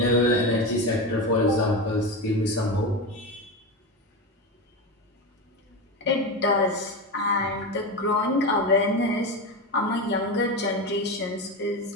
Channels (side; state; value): both; normal; correlation 0.19